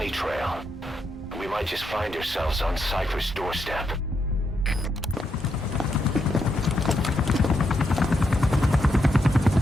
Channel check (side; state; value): both; normal; correlation 0.81